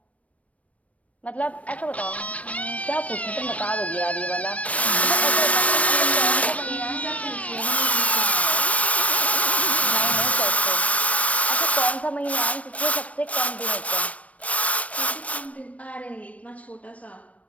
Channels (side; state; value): right; late; 0.066 ms